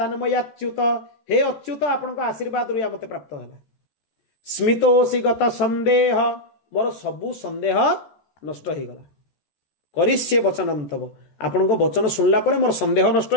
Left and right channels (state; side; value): late; right; 14 ms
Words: हे अच्युत आपनका आशीर्वाद रुया मते प्राप्त हैला। स्मितोऽसि गत संदेह, मोर सबु संदेह नष्ट होईगला। करिष्ये वचनम तव, आपनको वचन सुनला परे मोर संदेह नष्ट